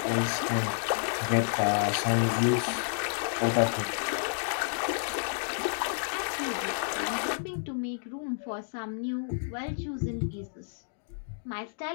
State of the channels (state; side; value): silent; right; digital silence